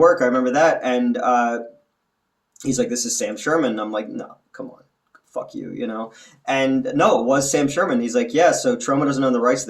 I remember that. And he's like, this is Sam Sherman. And I'm like, no, come on. Fuck you, you know? And no, it was Sam Sherman. He's like, yeah, so Troma doesn't own the rights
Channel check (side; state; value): both; identical; correlation 1.00